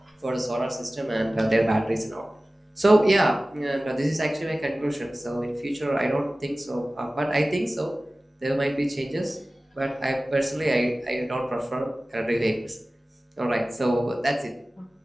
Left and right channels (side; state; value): both; normal; correlation 0.97